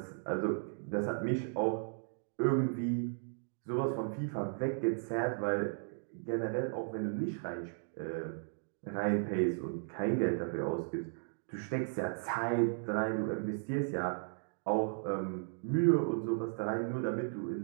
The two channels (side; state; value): left; silent; digital silence